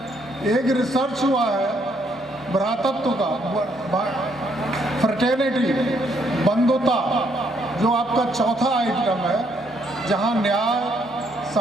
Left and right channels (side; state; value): both; normal; correlation 0.71